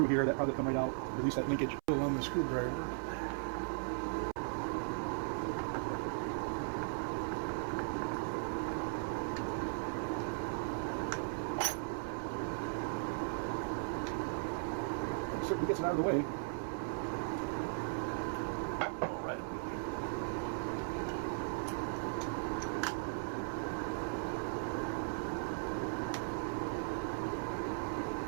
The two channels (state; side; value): silent; left; 53 dB below the other